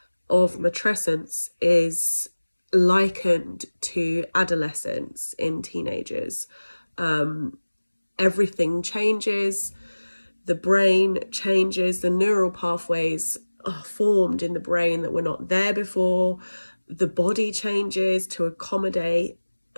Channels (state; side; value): inverted; both; correlation -1.00